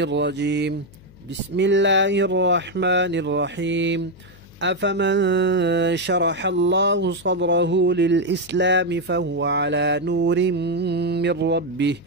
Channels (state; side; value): noise; left; hum, 24 dB below the sound